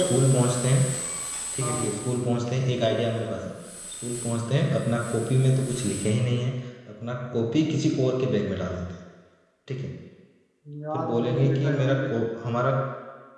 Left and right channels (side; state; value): both; identical; correlation 1.00